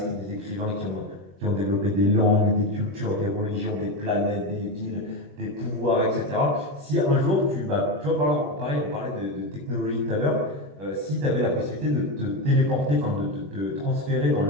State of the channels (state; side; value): late; left; 21 ms